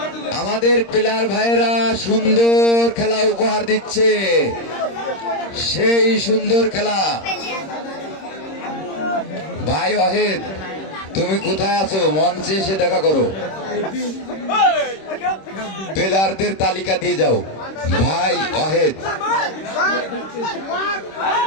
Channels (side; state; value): right; late; 26 ms